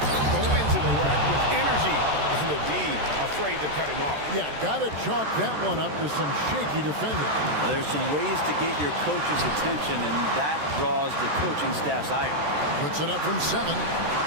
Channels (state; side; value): late; left; 14 ms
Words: Going to the rack with energy. And the D afraid to cut him off. Yeah, got to chalk that one up to some shaky defending. Well, there's some ways to get your coach's attention, and that draws the coaching staff's ire. Puts it up from 7.